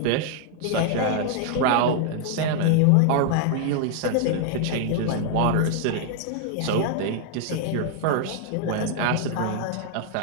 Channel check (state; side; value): different; both; correlation 0.00